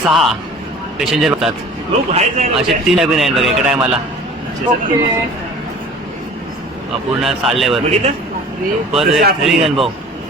पॅसेंजर होतात. असे 3 कॅबिन आहेत बघा एका टायमाला. पूर्ण चाललंय वरती. परत अनुभव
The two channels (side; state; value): both; normal; correlation 0.44